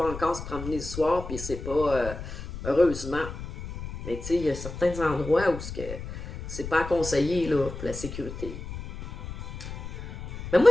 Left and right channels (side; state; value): left; noise; rumble, 9 dB below the sound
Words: encore se promener le soir, puis c'est pas. Heureusement. Mais tu sais, il y a certains endroits où c'est pas conseillé, là, pour la sécurité. Mais moi,